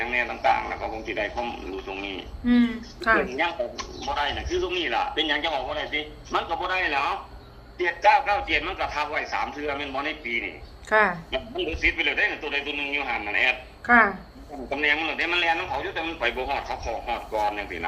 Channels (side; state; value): both; identical; correlation 1.00